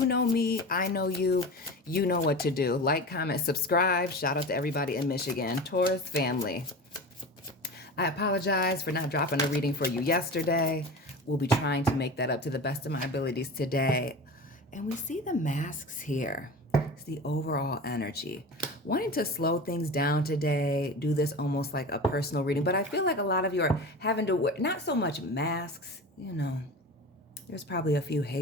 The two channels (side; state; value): both; normal; correlation 0.31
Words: know me, I know you, you know what to do. Like, comment, subscribe. Shout out to everybody in Michigan. Taurus family, I apologize for not dropping a reading for you yesterday. We'll be trying to make that up to the best of my abilities today. And we see the masks here. It's the overall energy. Wanting to slow things down today, do this almost like a personal reading, but I feel like a lot of you are having to wear, not so much masks, you know, there's probably a few